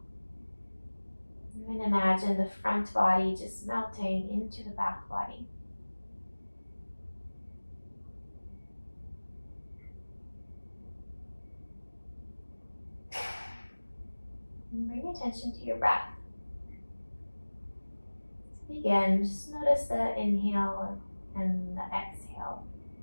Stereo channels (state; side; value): inverted; both; correlation -1.00